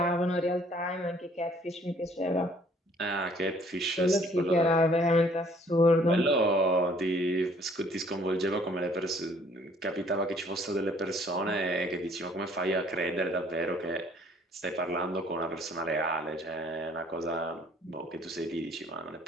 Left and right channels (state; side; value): normal; both; correlation 0.59